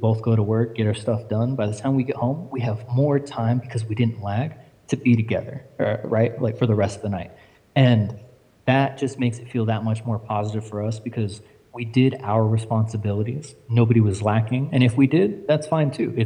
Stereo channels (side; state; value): both; identical; correlation 1.00